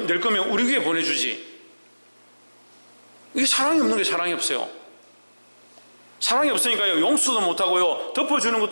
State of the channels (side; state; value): both; inverted; correlation -1.00